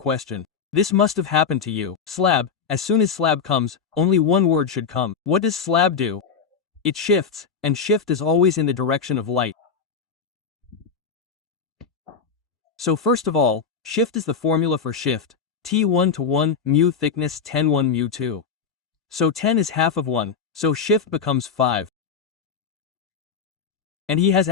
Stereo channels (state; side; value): quieter; right; 5.9 dB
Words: This must have happened to you. Slab. As soon as slab comes, only one word should come. What does slab do? It shifts, and shift is always in the direction of light. So first of all, shift is the formula for shift. T1 to 1, mu thickness 10 1 mu 2. So 10 is half of 1, so shift becomes 5. And he has